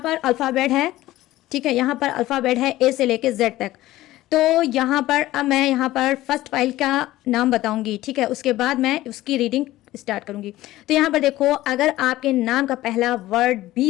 अल्फ़ाबेट है, ठीक है। यहाँ पर अल्फ़ाबेट है ए से लेके जेड तक। तो यहाँ पर अब मैं यहाँ पर फर्स्ट फाइल का नाम बताऊंगी, ठीक है, उसके बाद मैं उसकी रीडिंग स्टार्ट करूंगी। तो यहाँ पर देखो, अगर आपके नाम का पहला वर्ड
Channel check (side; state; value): right; quieter; 16.1 dB